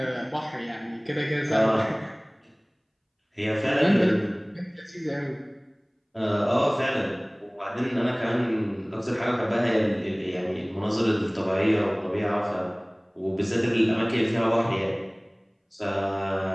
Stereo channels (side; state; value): both; identical; correlation 1.00